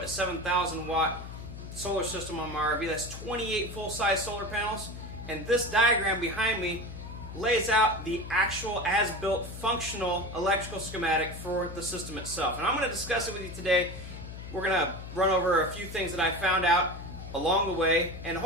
a 7,000 watt solar system on my RV. That's 28 full-size solar panels, and this diagram behind me lays out the actual as-built functional electrical schematic for the system itself. And I'm going to discuss it with you today. We're going to run over a few things that I found out along the way, and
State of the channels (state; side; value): noise; left; hum, 11 dB below the sound